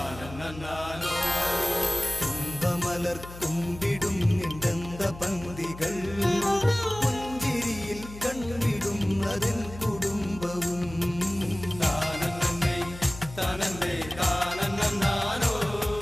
തുമ്പമലർ തുമ്പിടും നിന്ദന്ത പന്തികൾ പുഞ്ചിരിയിൽ കണ്ടിടുന്നതിൻ കുടുംബവും താനന്നേ താനന്നേ താനന്നോ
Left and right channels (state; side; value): noise; left; hum, 14 dB below the sound